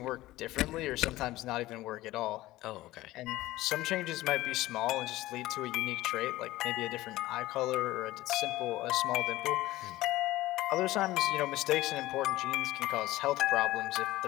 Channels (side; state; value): right; quieter; 17.2 dB